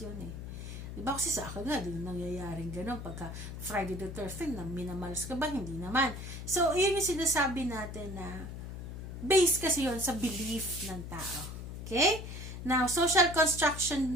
yun eh. Diba kasi sa akin nga, din nangyayaring gano'n pagka Friday the 13th, na minamalas ka ba? Hindi naman. So, yun yung sinasabi natin na based kasi yun sa belief ng tao. Okay? Now, social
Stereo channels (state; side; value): noise; left; hum, 8 dB below the sound